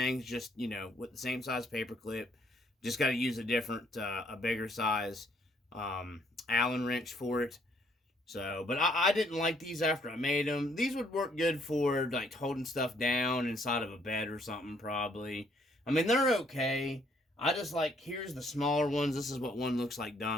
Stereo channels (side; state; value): both; normal; correlation 0.67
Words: just, with the same size paper clip. Just got to use a different, a bigger size Allen wrench for it. So, but I didn't like these after I made them. These would work good for like holding stuff down inside of a bed or something, probably. I mean, they're okay. I just like, here's the smaller ones. This is what one looks like